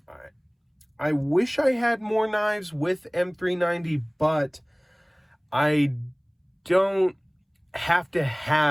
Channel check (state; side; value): identical; both; correlation 1.00